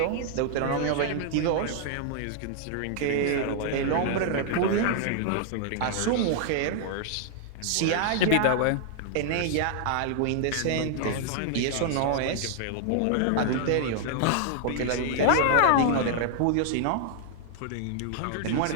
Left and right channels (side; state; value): both; different; correlation 0.00